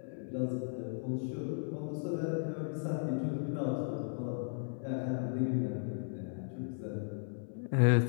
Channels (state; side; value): silent; right; 54 dB below the other